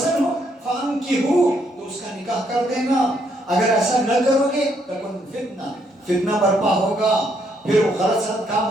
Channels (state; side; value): normal; both; correlation 0.73